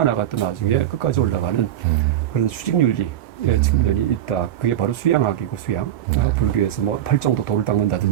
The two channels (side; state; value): left; quieter; 11.6 dB